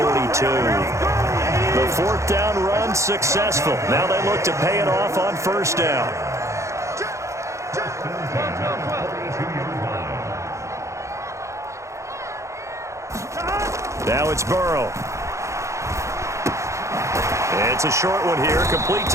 42. The 4th down run successful. Now they look to pay it off on 1st down. Now it's Burrow. It's a short one here, complete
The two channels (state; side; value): late; left; 0.14 ms